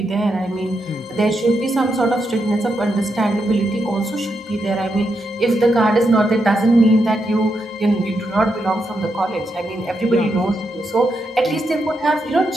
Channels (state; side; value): normal; both; correlation 0.83